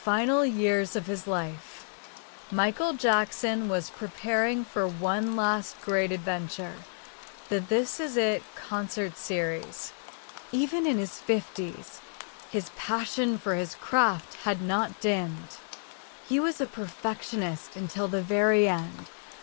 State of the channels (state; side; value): silent; right; digital silence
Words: years of his life, Michael Jackson was preparing for one last great adventure, the This Is It concert series. Even in his 50s, his passion for his craft had not dimmed. He was a perfectionist until the very end,